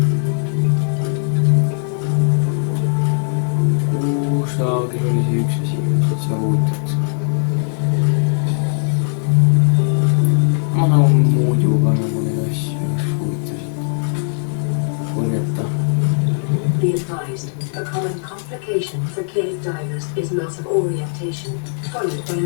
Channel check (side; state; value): right; silent; digital silence